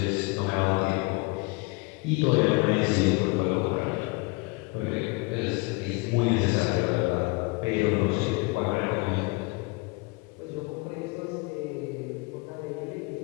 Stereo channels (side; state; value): right; quieter; 26.7 dB